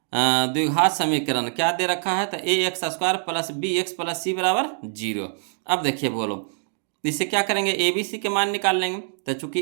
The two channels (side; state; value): left; silent; digital silence